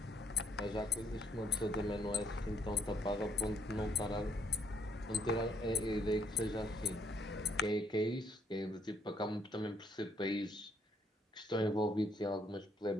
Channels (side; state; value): both; normal; correlation 0.69